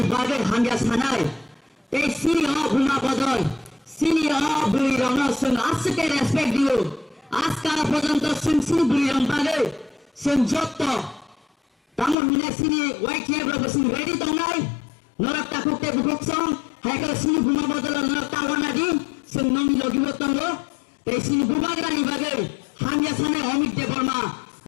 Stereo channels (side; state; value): right; drops out; at 12.2 s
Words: বাগে হাঙ্গা সানাই এই সিনি অ ভূমা বদল সিনি অ বুড়ি রং সুন আজকে রেসপেক্ট দিও আজকাল পর্যন্ত সুন সিনি বুড়ি রং বাগে সুন যত তামন মিনা সিনি ওয়াই কেব্রা বসুন রেডি দংনাই নরক তাকুকে বুকসং হাইকা সিনি ভূমা বদল নরক তাওনা দি সুন নমি লগিব তঙ্গ এই সিনি ভূভাগরানি বাগে হাঙ্গা সানাই অমিত দেবর্মা